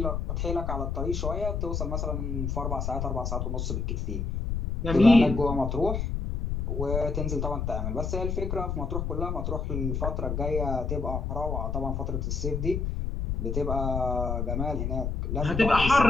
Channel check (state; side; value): noise; left; rumble, 1 dB below the sound